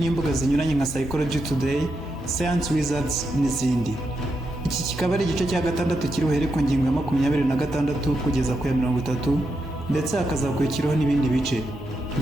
zinyuranye nka Psychology Today, Science Wizards n'izindi. Iki kikaba ari igice cya gatandatu kiri buhere ku ngingo ya 26 kugeza ku ya 30 ndetse hakazakurikiraho n'ibindi bice.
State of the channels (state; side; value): normal; both; correlation 0.84